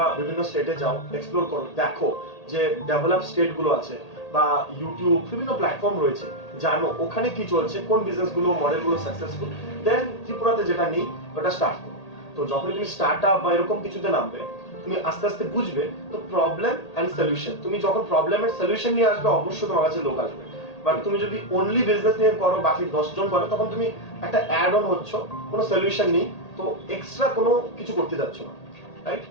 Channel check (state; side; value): late; right; 1.8 ms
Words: বিভিন্ন স্টেটে যাও, এক্সপ্লোর করো, দেখো যে ডেভেলপ স্টেট গুলো আছে বা ইউটিউব বিভিন্ন প্ল্যাটফর্ম রয়েছে, জানো ওখানে কি চলছে, কোন বিজনেস গুলো মডেল গুলো সাকসেসফুল, দেন ত্রিপুরাতে যেটা নেই ওটা স্টার্ট করো। তো যখন তুমি স্টার্টআপ বা এরকম কিছুতে নামবে, তুমি আস্তে আস্তে বুঝবে তো প্রবলেম এন্ড সলিউশন, তুমি যখন প্রবলেমের সলিউশন নিয়ে আসবে অবশ্যই তোমার কাছে লোক আসবে। বাট তুমি যদি অনলি বিজনেস নিয়ে করো, বাকি 10 জন করে, তখন তুমি একটা অ্যাড অন হচ্ছ, কোনো সলিউশন নেই, তো এক্সট্রা কোনো কিছু করতে যাচ্ছ না, রাইট?